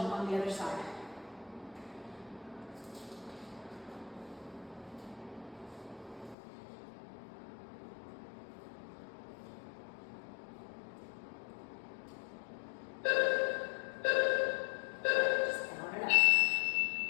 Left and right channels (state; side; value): drops out; right; at 6.4 s